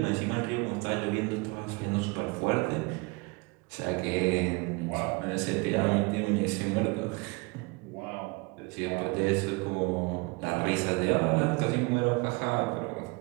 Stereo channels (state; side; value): quieter; left; 27.5 dB